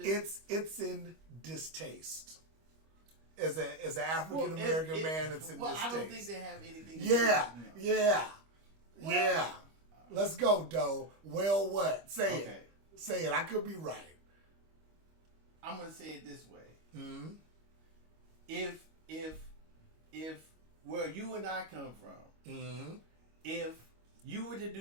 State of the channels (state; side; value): late; left; 25 ms